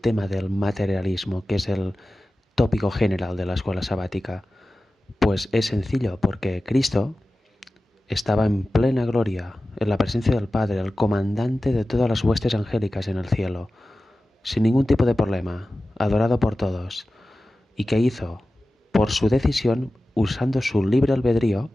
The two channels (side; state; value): both; normal; correlation 0.95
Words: del materialismo, que es el tópico general de la escuela sabática? Pues es sencillo, porque Cristo estaba en plena gloria, en la presencia del Padre, el comandante de todas las huestes angélicas en el cielo, sin ningún tipo de problema, adorado por todos. ¿Y qué hizo? Por su decisión, usando su libre albedrío,